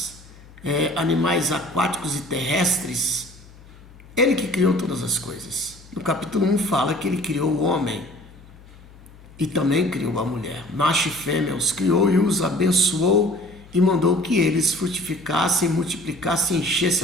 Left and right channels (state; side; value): noise; left; hum, 22 dB below the sound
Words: animais aquáticos e terrestres. Ele que criou todas as coisas. No capítulo 1 fala que ele criou o homem e também criou a mulher. Macho e fêmea os criou e os abençoou e mandou que eles frutificassem, multiplicassem e